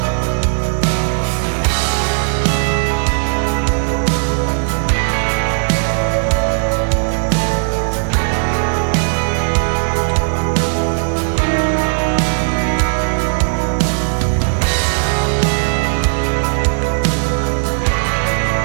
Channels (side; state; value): left; silent; digital silence